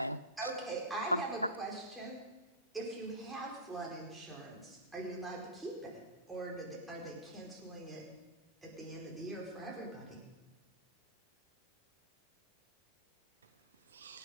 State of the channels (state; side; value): normal; both; correlation -0.17